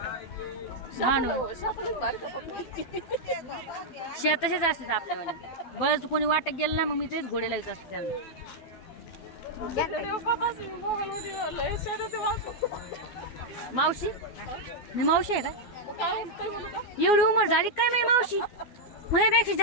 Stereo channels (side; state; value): right; late; 12 ms